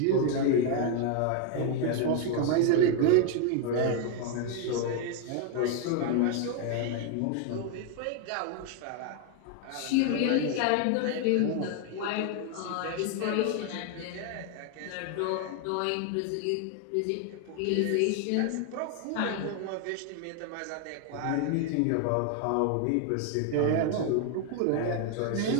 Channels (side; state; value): both; different; correlation 0.01